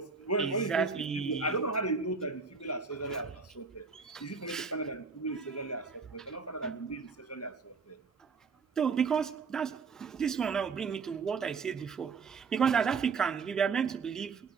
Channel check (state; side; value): quieter; left; 5.1 dB